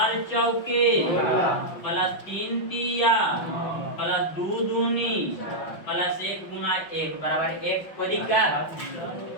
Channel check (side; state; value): right; late; 5.7 ms